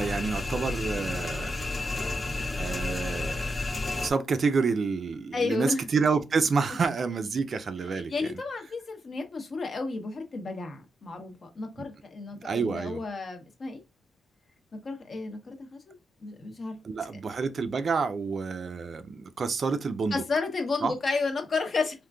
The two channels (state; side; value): normal; both; correlation 0.85